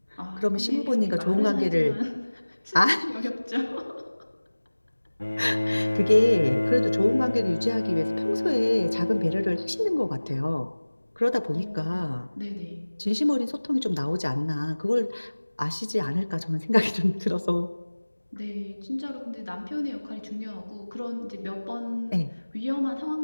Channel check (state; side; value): inverted; both; correlation -1.00